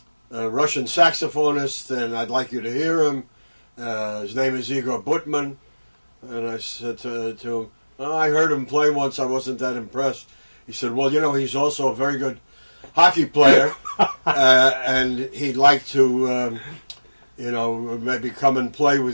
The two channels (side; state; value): both; inverted; correlation -1.00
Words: Russian saxophonist, and I'd like you to hear him. His name is Igor Butman. And I said to him, I heard him play once, I wasn't that impressed. He said, well, he's also a very good hockey player, and he'd like to, maybe come and play